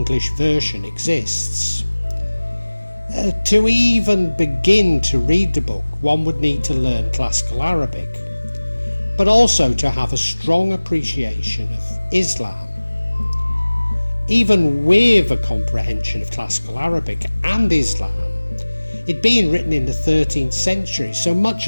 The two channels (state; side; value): inverted; both; correlation -1.00